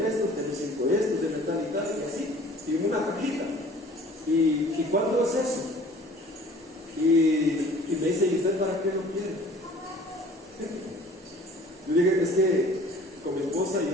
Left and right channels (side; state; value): both; normal; correlation 0.49